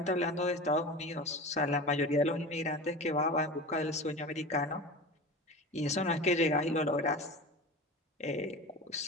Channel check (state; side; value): normal; both; correlation 0.31